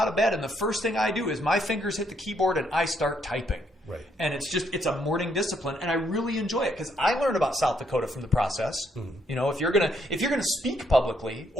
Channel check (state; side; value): normal; both; correlation 0.72